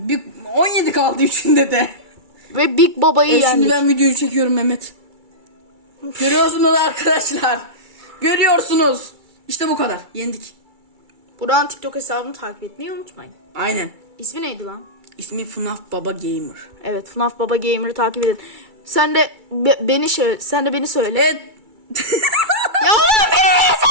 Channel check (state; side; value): late; left; 2.3 ms